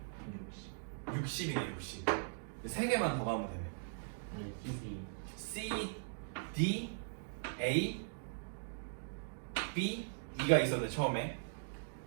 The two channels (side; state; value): left; silent; digital silence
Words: 60이네 60. 3개만 더 가면 되네. C, D, A, B, E가 있었는데 처음에